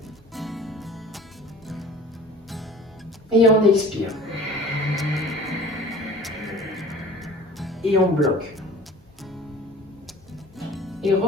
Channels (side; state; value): both; normal; correlation 0.43